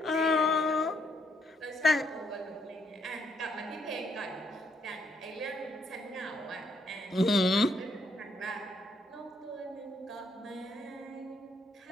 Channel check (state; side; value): normal; both; correlation 0.72